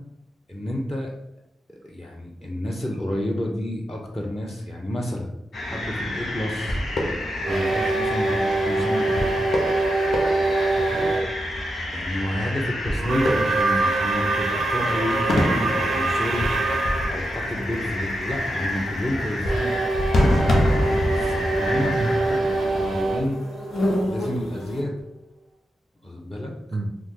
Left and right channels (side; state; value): both; normal; correlation 0.87